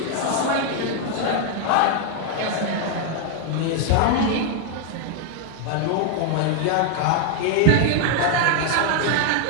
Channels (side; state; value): both; different; correlation 0.00